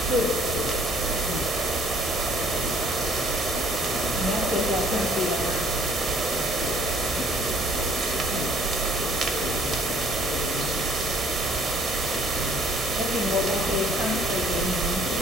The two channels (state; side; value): normal; both; correlation 0.57